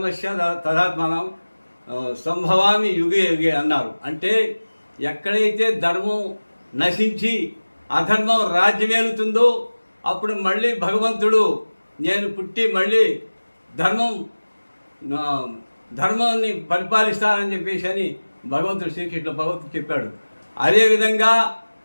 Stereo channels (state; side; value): inverted; both; correlation -1.00